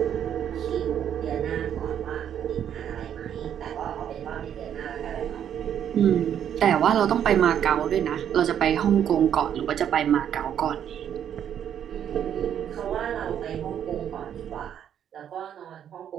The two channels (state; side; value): quieter; left; 9.4 dB